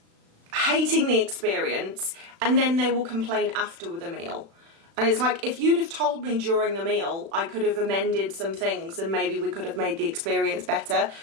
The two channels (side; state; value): left; late; 36 ms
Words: hating the experience and then they will complain after the meal. And it's like, if you'd have told me during the meal, I could have amended some things and maybe we could have made the experience better.